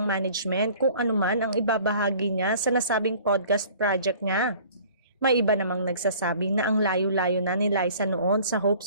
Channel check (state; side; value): inverted; both; correlation -0.50